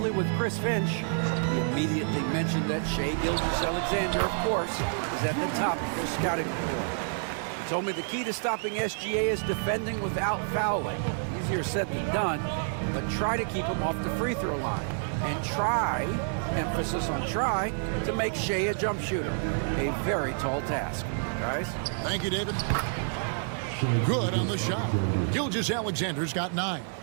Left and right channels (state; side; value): silent; left; 59 dB below the other